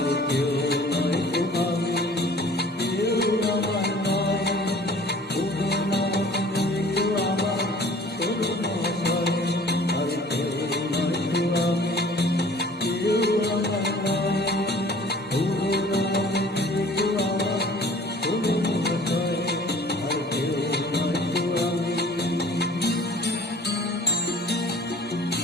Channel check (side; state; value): both; normal; correlation 0.49